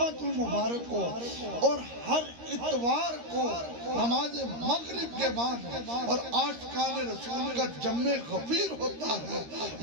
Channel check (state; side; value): late; left; 13 ms